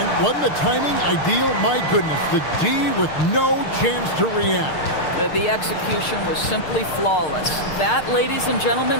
wasn't the timing ideal? My goodness. The D with no chance to react. The execution was simply flawless. That, ladies and gentlemen,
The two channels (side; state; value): right; late; 6.6 ms